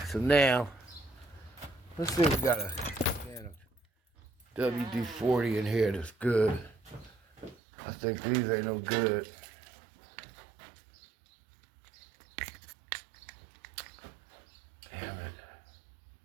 so now, let's see if we got a can of WD-40 in here that's good. I think these ain't no good. Damn it.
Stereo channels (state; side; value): drops out; left; at 7.6 s